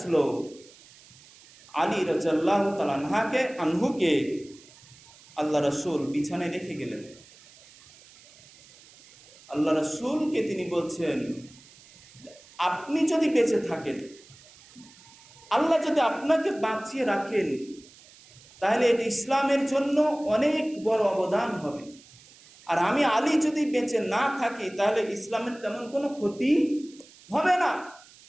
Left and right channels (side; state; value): right; noise; hiss, 24 dB below the sound